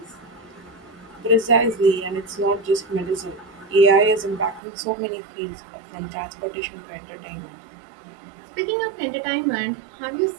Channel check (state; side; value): drops out; left; at 4.6 s